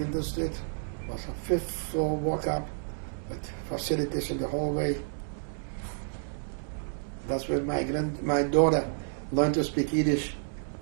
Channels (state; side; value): silent; left; digital silence